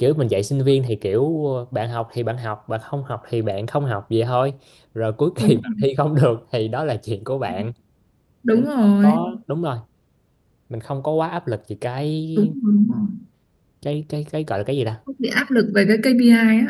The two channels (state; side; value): identical; both; correlation 1.00